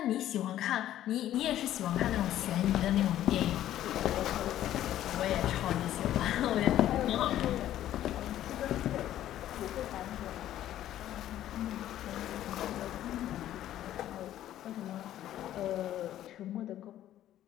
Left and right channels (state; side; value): quieter; right; 12.5 dB